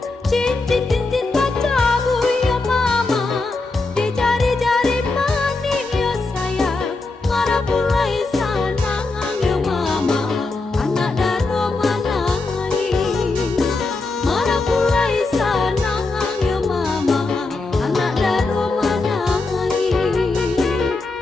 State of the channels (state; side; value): quieter; right; 3.5 dB